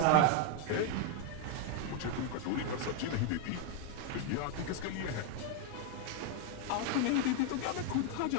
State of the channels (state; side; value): different; both; correlation 0.01